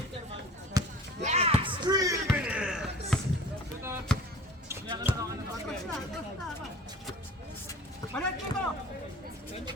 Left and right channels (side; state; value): both; normal; correlation 0.42